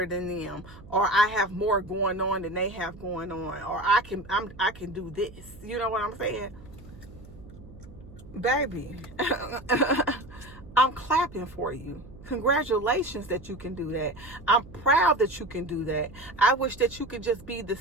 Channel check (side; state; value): right; noise; hum, 19 dB below the sound